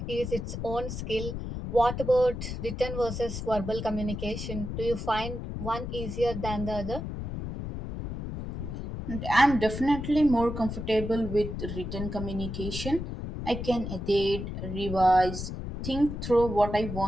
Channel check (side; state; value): left; noise; rumble, 6 dB below the sound